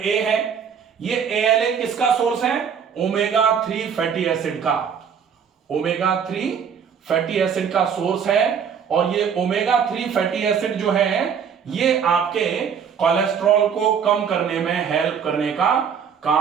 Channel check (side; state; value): left; quieter; 7.2 dB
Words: है ये, ALA किसका सोर्स है? ओमेगा 3 फैटी एसिड का, ओमेगा 3 फैटी एसिड का सोर्स है। और ये ओमेगा 3 फैटी एसिड जो है ये आपके कोलेस्ट्रॉल को कम करने में हेल्प करने का